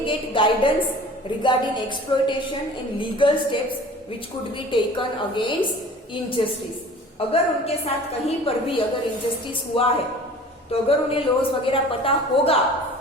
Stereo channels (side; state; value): both; normal; correlation 0.44